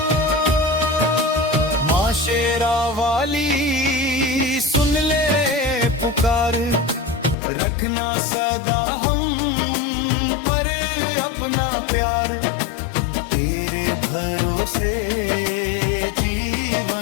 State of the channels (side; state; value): right; drops out; at 7.4 s